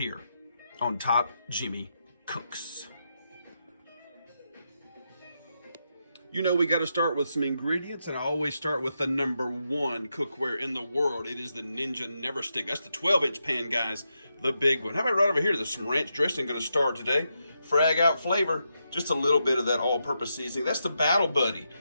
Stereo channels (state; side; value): inverted; both; correlation -0.84